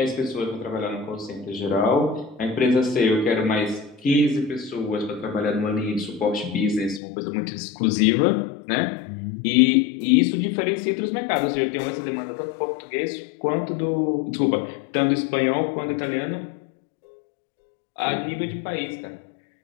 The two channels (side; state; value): right; drops out; at 7.0 s